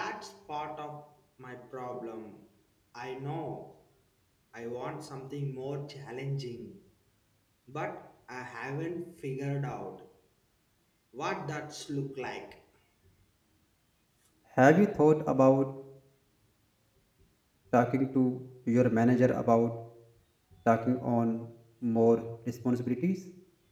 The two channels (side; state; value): both; identical; correlation 1.00